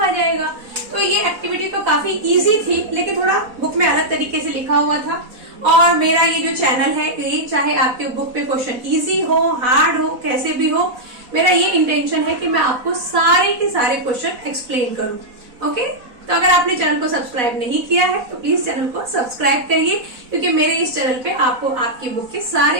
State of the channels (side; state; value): left; late; 4.1 ms